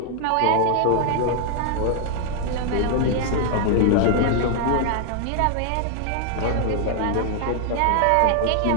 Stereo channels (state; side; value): different; both; correlation 0.00